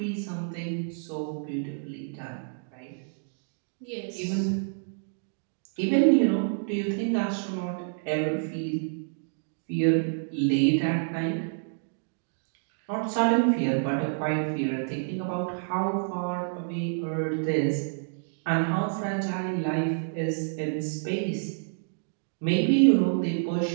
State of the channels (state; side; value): silent; left; digital silence